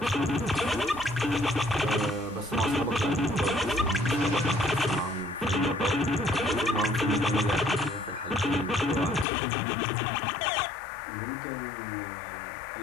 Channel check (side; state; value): right; drops out; at 9.2 s